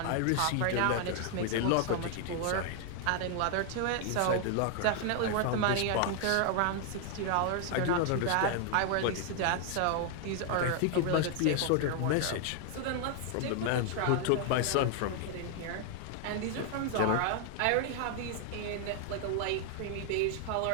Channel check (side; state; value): both; different; correlation 0.00